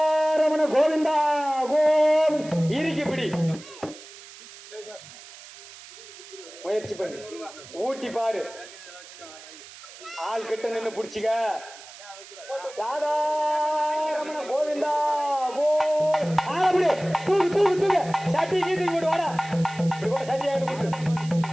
கோவிந்தா கோவிந்த். இறுக்கி பிடி, முயற்சி பண்ணி ஊட்டி பாரு, ஆள் கிட்ட நின்று பிடிச்சிக்க. ராதாரமண கோவிந்தா கோவிந்த். தூக்கு தூக்கு தூக்கு, சட்டி கீதி போட்டு வாடா. சட்டி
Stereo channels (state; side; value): noise; right; hiss, 18 dB below the sound